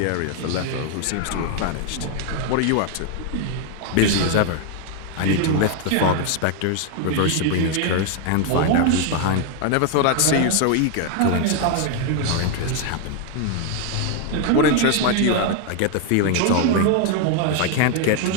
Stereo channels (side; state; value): both; different; correlation 0.01